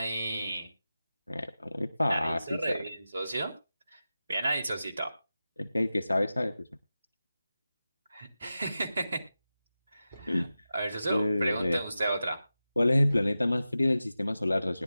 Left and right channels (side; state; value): both; inverted; correlation -0.93